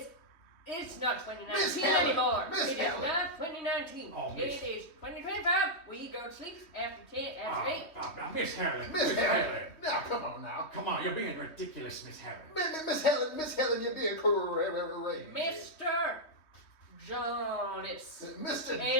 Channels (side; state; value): right; late; 3.2 ms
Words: It's not 2019 Miss Helen, anymore. Miss It is Helen. not 2019. Oh, It Miss- is 2025. We go to sleep after 10, after 8. Now, Miss Helen. Miss Helen. Now, come on now. Come on, you're being ridiculous, Miss Helen. Miss Helen, you're being crazy. Mr. Jonas Mr.